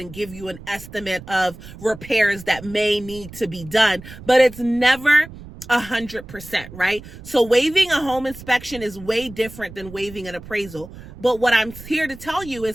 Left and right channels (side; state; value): right; noise; rumble, 16 dB below the sound